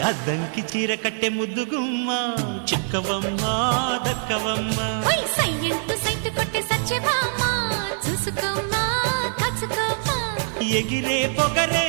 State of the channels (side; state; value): left; silent; digital silence